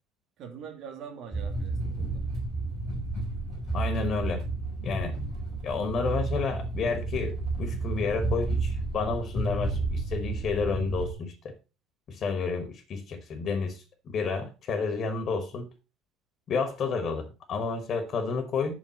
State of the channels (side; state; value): both; normal; correlation 0.67